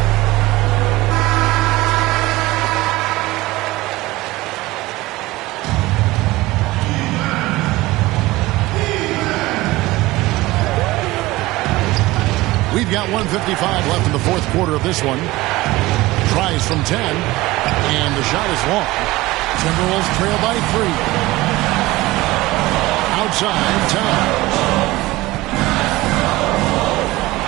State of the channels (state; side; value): quieter; left; 19.3 dB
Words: We've got 1:55 left in the fourth quarter of this one. Tries from 10, and the shot is long. Timberwolves trail by 3. Outside, Towns.